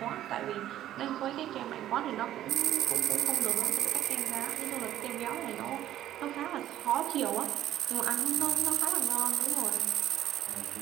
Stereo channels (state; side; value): quieter; left; 12.6 dB